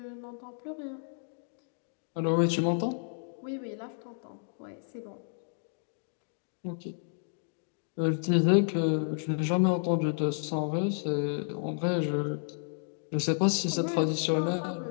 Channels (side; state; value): right; silent; digital silence